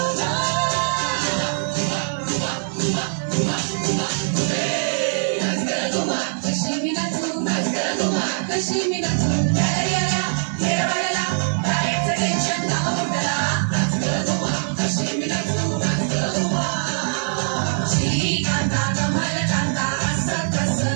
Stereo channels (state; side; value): silent; left; digital silence